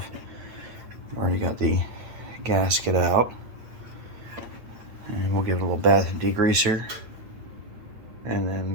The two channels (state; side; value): late; left; 9.0 ms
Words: I've already got the gasket out, and we'll give it a little bath and degreaser and